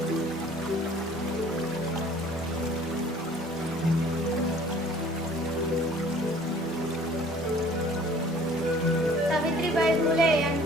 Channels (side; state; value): both; normal; correlation 0.52